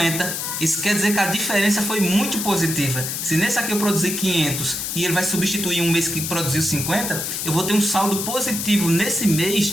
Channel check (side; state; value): left; noise; hiss, 3 dB below the sound